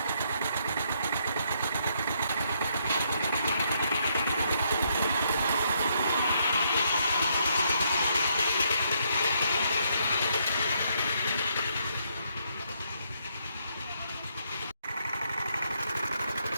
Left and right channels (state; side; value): inverted; both; correlation -0.73